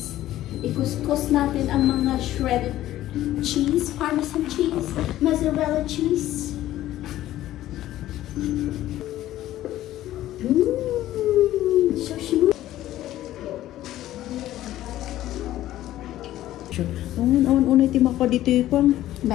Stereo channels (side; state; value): right; quieter; 14.1 dB